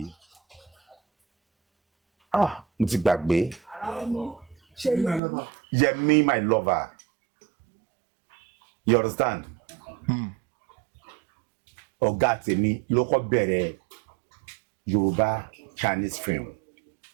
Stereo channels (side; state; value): left; drops out; at 5.2 s